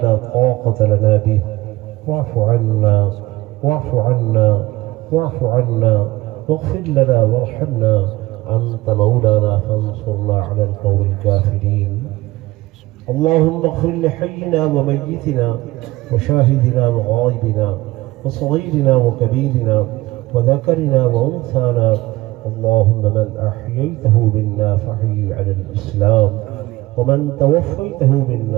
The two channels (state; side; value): quieter; left; 19.2 dB